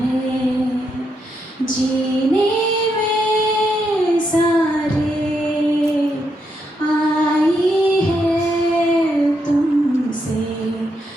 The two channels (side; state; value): both; normal; correlation 0.80